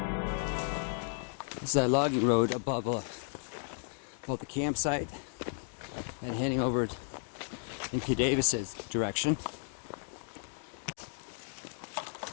This is that logging road above the campsite and heading over in P. Davis's direction.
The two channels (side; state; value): right; silent; 55 dB below the other